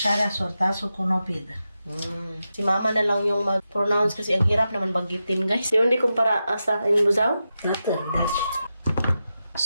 sortasul cu nopidă. Si Mama na lang yung mag-pronounce kasi ang hirap naman bagitin, guys. Yung di kumpara sa Inbuzaw. Natârdaci.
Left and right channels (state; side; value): inverted; both; correlation -0.90